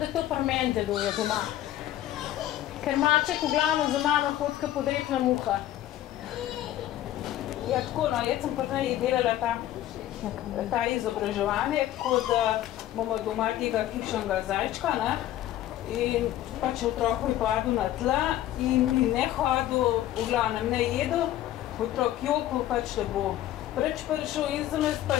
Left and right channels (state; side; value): quieter; right; 13.4 dB